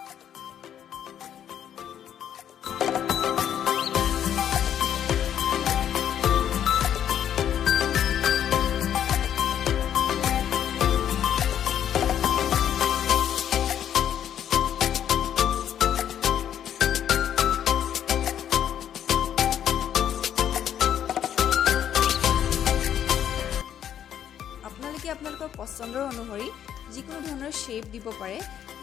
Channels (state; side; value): quieter; right; 9.9 dB